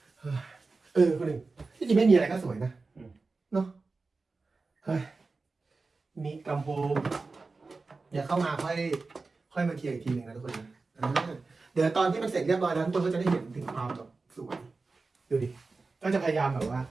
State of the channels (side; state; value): left; quieter; 3.9 dB